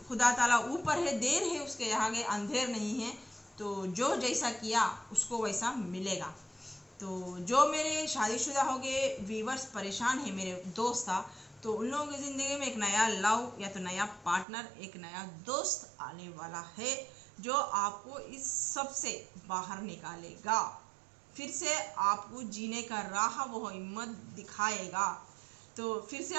खुदा ताला ऊपर है, देर है उसके आगे, अंधेर नहीं है। तो जो जैसा किया उसको वैसा मिलेगा। तो जो मेरे शादीशुदा हो गए व्यूवर्स परेशान है, मेरे दोस्त था, तो उन लोगों की ज़िंदगी में एक नया लव, या तो नया पार्टनर, एक नया दोस्त आने वाला है, जो आपको इस सब से बाहर निकालेगा, फिर से आपको जीने का राह वो हिम्मत दिखाएगा। तो फिर से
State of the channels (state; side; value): drops out; left; at 14.5 s